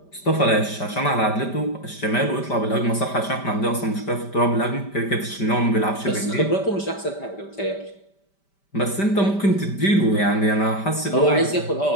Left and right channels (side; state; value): right; late; 5.1 ms